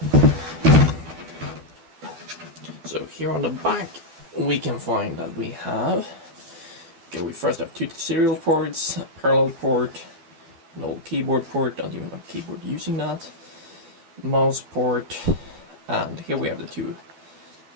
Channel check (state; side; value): late; left; 12 ms